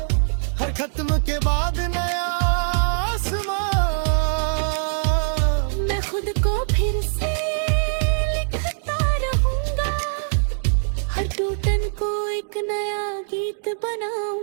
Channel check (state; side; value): silent; left; digital silence